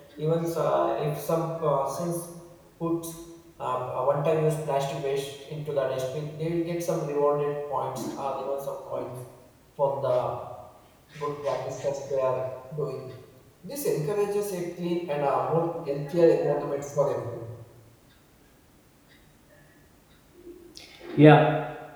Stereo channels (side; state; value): both; identical; correlation 1.00